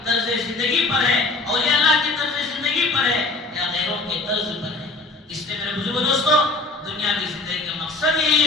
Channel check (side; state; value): right; quieter; 3.4 dB